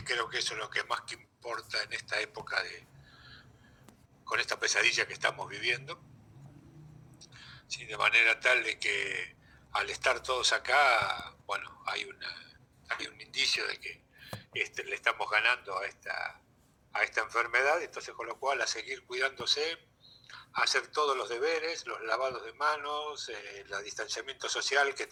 creo que eso es lo que más que importa en esta época con esta pesadilla que estamos viviendo. Sí, de manera tal de que al estar todos acá, bueno, hay un indicio de que le estamos ganando a esta enfermedad, entonces con lo cual a seguir cuidándose, a hacer todos los deberes, los lavados de manos, el distanciamiento social que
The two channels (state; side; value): identical; both; correlation 1.00